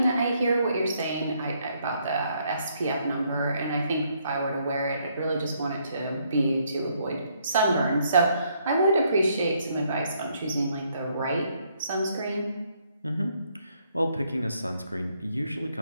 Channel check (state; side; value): inverted; both; correlation -0.71